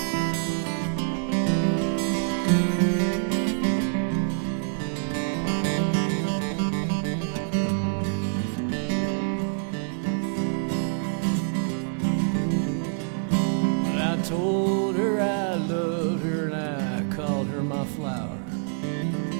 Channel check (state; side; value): silent; left; digital silence